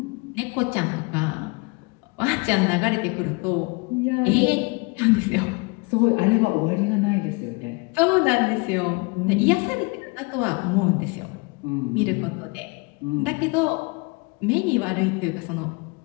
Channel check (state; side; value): quieter; right; 28.8 dB